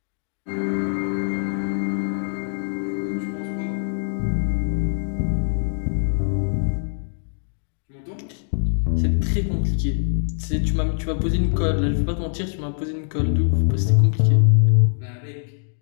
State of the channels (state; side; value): silent; right; digital silence